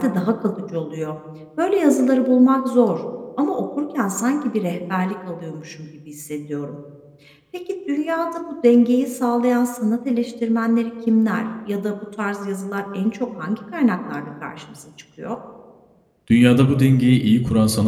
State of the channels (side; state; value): both; identical; correlation 1.00